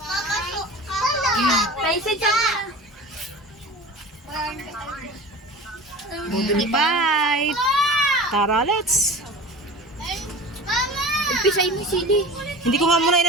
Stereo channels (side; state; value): both; normal; correlation 0.36